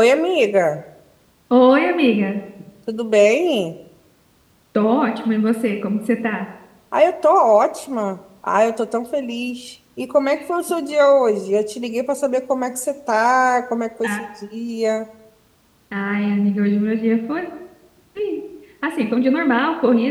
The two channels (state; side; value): identical; both; correlation 1.00